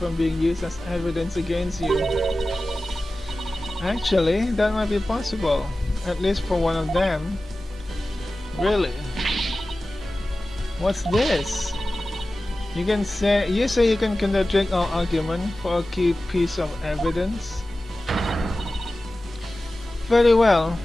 being used as evidence against you. Actually, that might be possible, at least for one of them. Really? What's this? You say you can contradict our argument for a key piece of evidence. Very well,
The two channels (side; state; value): both; normal; correlation 0.96